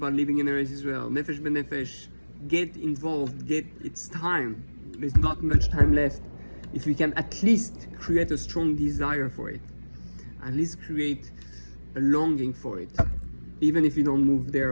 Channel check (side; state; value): both; inverted; correlation -1.00